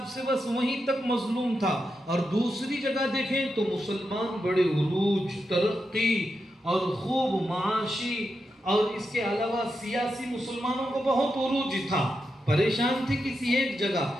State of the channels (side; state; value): both; normal; correlation 0.87